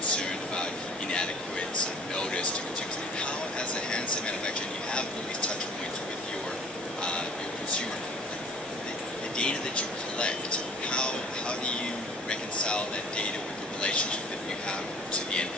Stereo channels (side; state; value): both; normal; correlation 0.49